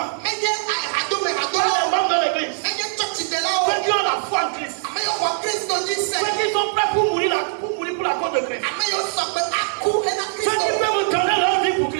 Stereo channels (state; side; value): silent; left; digital silence